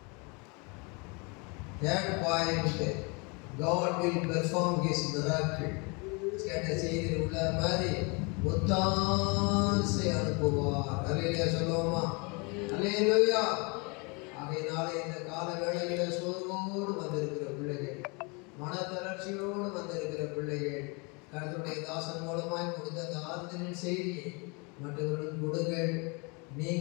That point, God will perform His miracle. கேட்ட செய்தியில் உள்ள மாதிரி ஒத்தாசை அனுப்புவார். அல்லேலூயா சொல்லுவோமா? அல்லேலூயா. ஆகையினாலே இந்த கால வேளையில சோர்வோடு வந்திருக்கிற பிள்ளைகள், மனத்தளர்ச்சியோடு வந்திருக்கிற பிள்ளைகள், கர்த்தருடைய தாசன் மூலமாய் கொடுத்த அந்த ஆறுதலின் செய்தியை மற்றவர்களும் கொடுங்கள்.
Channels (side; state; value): right; quieter; 30.8 dB